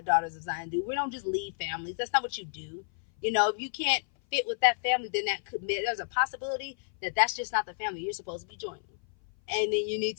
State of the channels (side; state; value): right; silent; 56 dB below the other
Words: daughters of Zion do. We don't just leave families. That's not what you do. If you can't fit with that family, then there's a possibility that that's just not the family you're supposed to be joining. And then you need